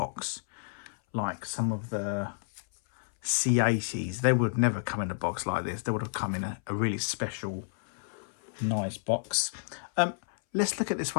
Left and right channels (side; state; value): right; silent; 57 dB below the other